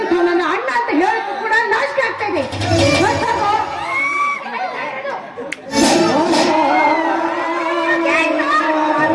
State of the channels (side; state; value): both; identical; correlation 1.00